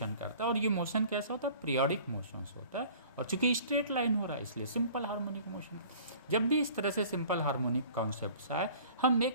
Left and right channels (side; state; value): both; inverted; correlation -0.48